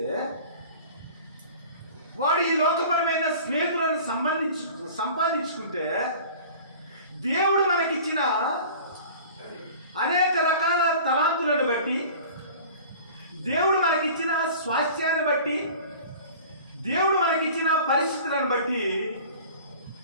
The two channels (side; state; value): both; inverted; correlation -0.43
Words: వాడు ఈ లోకపరమైన స్నేహితులను సంపాదించుకుంటే, దేవుడు మనకిచ్చిన అనేక రకాల తలాంతులను బట్టి, దేవుడు మనకిచ్చిన స్వాస్థ్యాన్ని బట్టి, దేవుడు మనకిచ్చిన పరిస్థితులను బట్టి